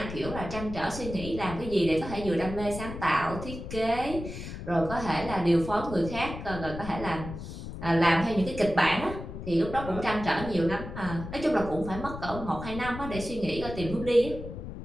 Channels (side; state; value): left; noise; rumble, 9 dB below the sound